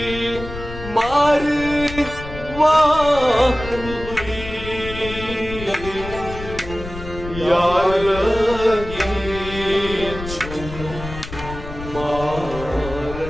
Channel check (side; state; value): left; noise; rumble, 11 dB below the sound